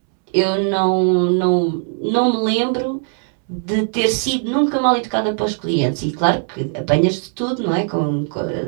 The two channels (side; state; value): left; silent; 58 dB below the other